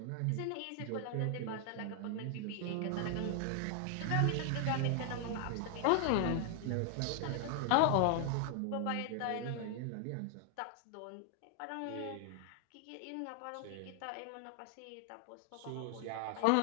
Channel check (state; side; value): different; both; correlation 0.00